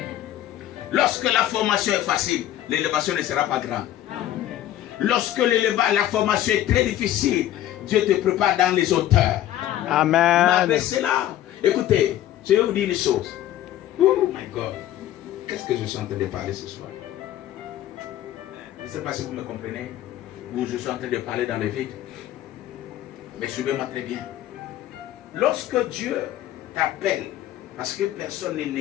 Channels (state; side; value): quieter; right; 12.8 dB